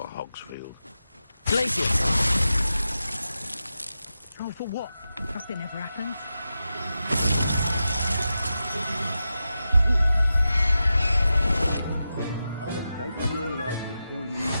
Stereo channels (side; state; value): both; inverted; correlation -0.91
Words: Hogsfield? Glacius! Oh, for what? Nothing ever happens. I'll have taken your life before you